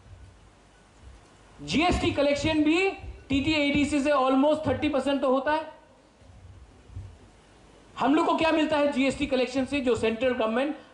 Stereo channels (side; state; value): both; identical; correlation 1.00